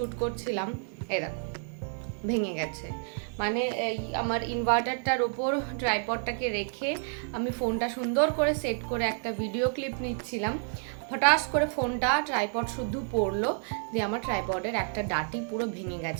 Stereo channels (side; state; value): left; silent; 55 dB below the other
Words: করছিলাম, এই দেখো ভেঙে গেছে। মানে এই আমার ইনভার্টারটার ওপর ট্রাইপডটাকে রেখে আমি ফোনটা সুন্দর করে সেট করে একটা ভিডিও ক্লিপ নিচ্ছিলাম। হঠাৎ করে ফোনটা ট্রাইপড শুদ্ধ পড়লো, দিয়ে আমার ট্রাইপডের একটা ডাটি পুরো ভেঙে